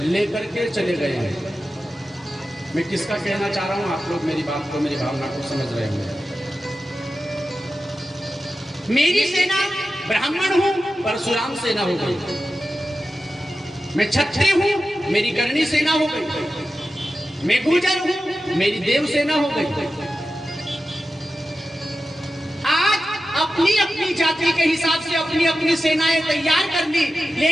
लेकर के चले गए हैं। मैं किसका कहना चाह रहा हूं, आप लोग मेरी बात को, मेरी भावना को समझ रहे होंगे। मेरी सेना ब्राह्मण हूं, परशुराम सेना हो गई। मैं क्षत्रिय हूं, मेरी करणी सेना हो गई। मैं गुर्जर हूं, मेरी देव सेना हो गई। आज अपनी अपनी जाति के हिसाब से अपनी अपनी सेनाएं तैयार कर ली,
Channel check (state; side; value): normal; both; correlation 0.93